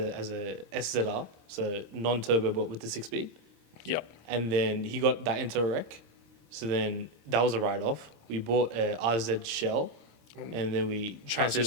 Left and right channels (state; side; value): late; left; 26 ms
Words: as a SZR, so non-turbo but with the 6-speed. Yep. And then he got that into a wreck. So then that was a write-off. We bought a RZ shell, and then we transferred